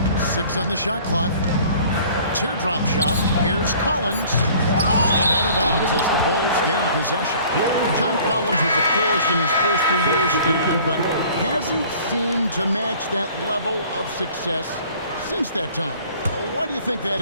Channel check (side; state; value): both; inverted; correlation -0.51